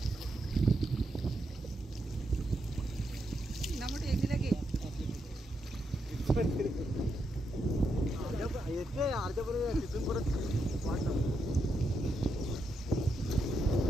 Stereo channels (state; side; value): normal; both; correlation 0.82